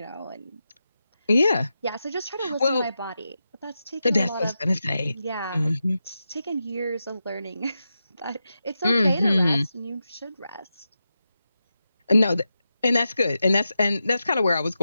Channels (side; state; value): both; inverted; correlation -0.89